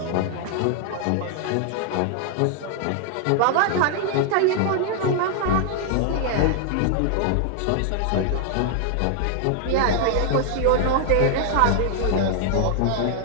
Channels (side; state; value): both; different; correlation 0.00